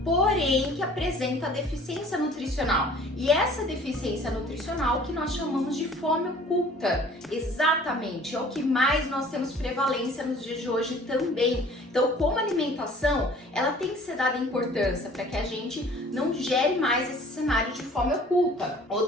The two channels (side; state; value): both; normal; correlation 0.51